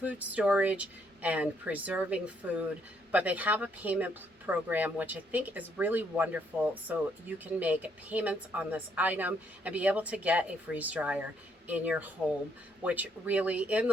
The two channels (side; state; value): both; normal; correlation 0.71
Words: storage and preserving food, but they have a payment program, which I think is really wonderful. So you can make payments on this item and be able to get a freeze dryer in your home, which really in